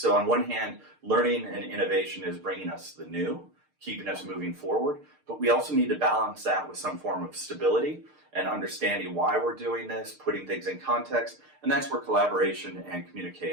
on one hand, learning and innovation is bringing us the new, keeping us moving forward. But we also need to balance that with some form of stability and understanding why we're doing this, putting things in context. And that's where collaboration and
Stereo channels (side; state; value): left; late; 6.6 ms